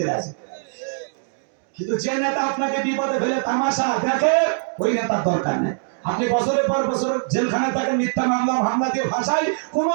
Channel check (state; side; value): silent; left; 64 dB below the other